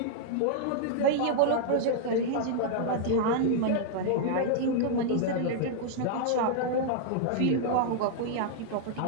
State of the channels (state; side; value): different; both; correlation -0.01